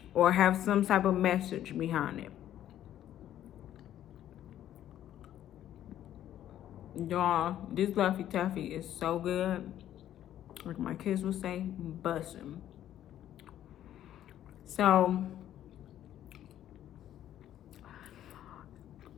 Or have some type of message behind it. Y'all, this Laffy Taffy is so good. Like my kids will say, bussin'. So,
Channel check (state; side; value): quieter; right; 11.7 dB